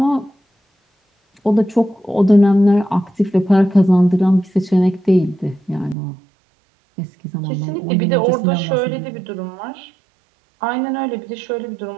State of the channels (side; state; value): left; drops out; at 6.0 s